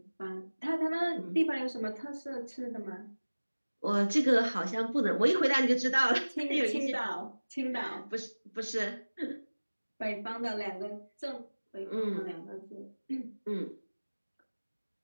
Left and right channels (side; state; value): both; inverted; correlation -1.00